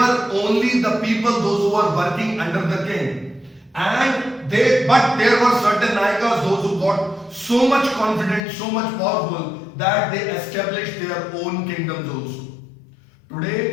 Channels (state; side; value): drops out; right; at 8.4 s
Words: only the people, those who were working under the king. But there were certain Nayakas, those who got so much confident, so much powerful that they established their own kingdoms also.